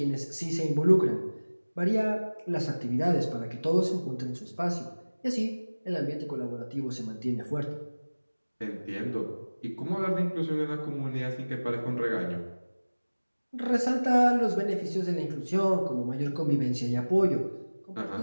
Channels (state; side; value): inverted; both; correlation -1.00